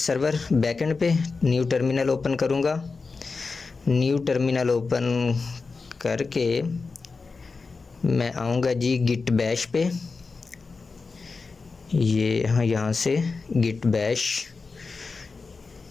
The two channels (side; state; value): right; quieter; 4.3 dB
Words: बैक एंड पे। न्यू टर्मिनल ओपन करूँगा। न्यू टर्मिनल ओपन करके मैं आऊँगा जी गिट बैश पे। ये यहाँ से गिट बैश